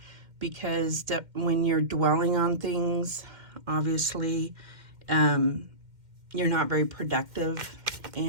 because when you're dwelling on things, obviously, you're not very productive,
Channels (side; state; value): left; late; 2.1 ms